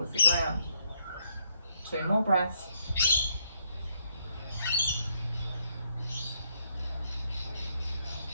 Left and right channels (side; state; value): both; inverted; correlation -0.76